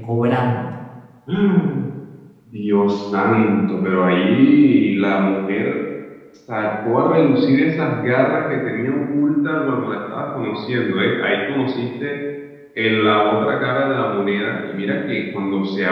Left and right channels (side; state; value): both; identical; correlation 1.00